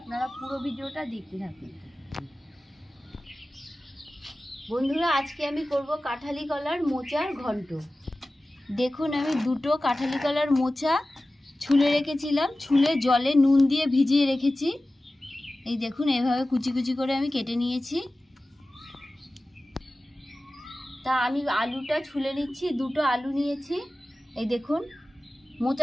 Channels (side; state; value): both; normal; correlation 0.96